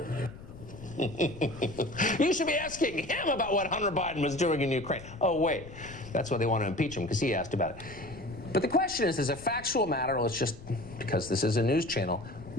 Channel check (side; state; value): left; noise; rumble, 16 dB below the sound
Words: You should be asking him about what Hunter Biden was doing in Ukraine. Oh, wait. That's why they want to impeach him, because he asked about it. But the question is, as a factual matter, let's just, because this is a news channel,